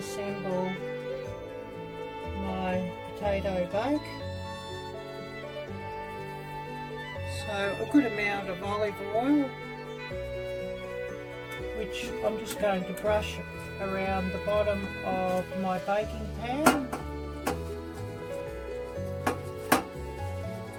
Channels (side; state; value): both; identical; correlation 1.00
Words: my potato bake. So a good amount of olive oil, which I'm just going to brush around the bottom of my baking pan.